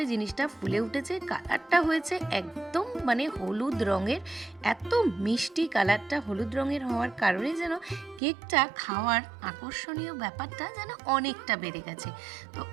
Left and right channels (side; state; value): left; drops out; at 8.2 s